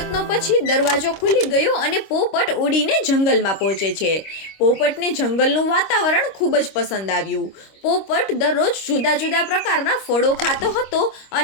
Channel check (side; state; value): right; late; 25 ms